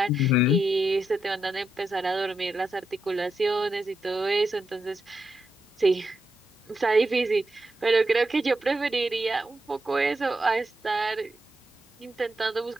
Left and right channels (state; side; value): normal; both; correlation 0.84